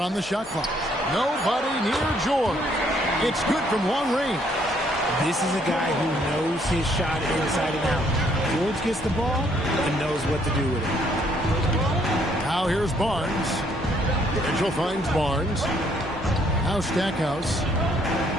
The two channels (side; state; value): both; normal; correlation 0.67